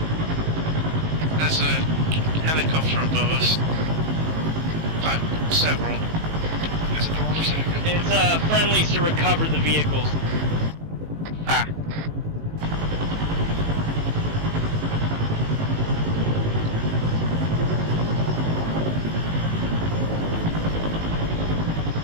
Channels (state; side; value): late; left; 19 ms